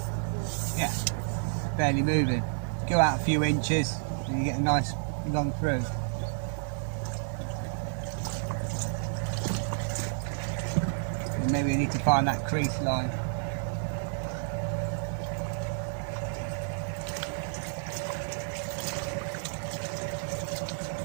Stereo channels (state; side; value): silent; left; 58 dB below the other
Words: yeah, barely moving. Go out a few inches and you get a nice long through. And maybe we need to find that crease line.